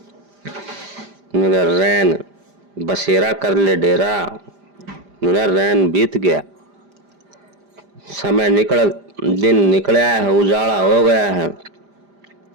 मेरा रैन बसेरा कर ले डेरा, मेरा रैन बीत गया, समय निकल, दिन निकला है, उजाला हो गया है।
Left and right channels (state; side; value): late; left; 5.0 ms